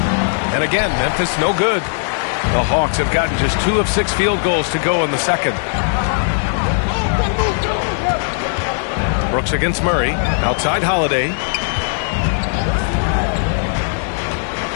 And again, Memphis no good. The Hawks have gotten just 2 of 6 field goals to go in the second. Brooks against Murray. Outside Holiday.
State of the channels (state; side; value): silent; right; 68 dB below the other